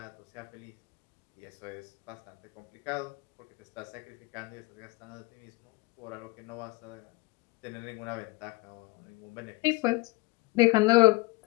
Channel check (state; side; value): quieter; right; 23.8 dB